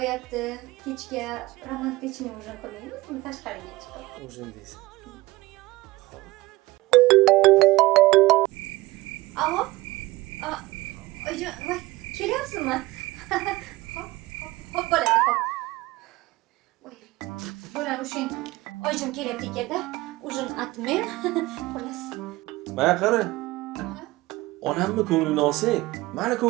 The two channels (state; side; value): quieter; left; 19.9 dB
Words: Kechga romantikni ujin qilmaymizmi tashqariga chiqib? O'zim deysan. Xo'p. Alo? Oyijon, voy, kelyapsizmi? Hop, bo'ladi, hop. Voy, bo'ladi o'shan. Oyijon kelyapti ekanda. Ujin atmen. Xolos. Mana qara. Onamni ko'nglini olsang, meni